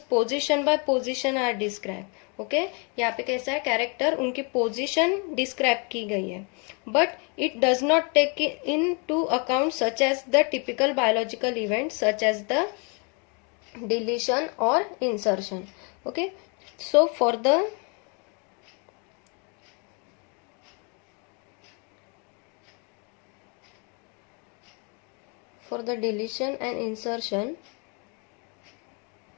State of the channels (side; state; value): right; quieter; 34.5 dB